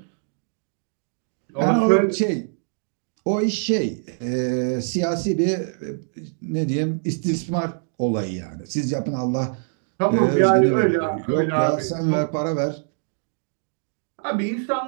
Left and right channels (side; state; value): left; silent; digital silence